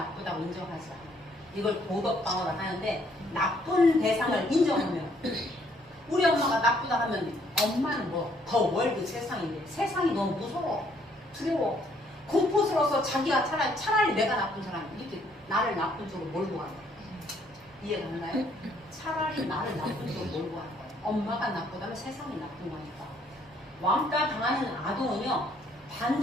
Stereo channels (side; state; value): both; normal; correlation 0.66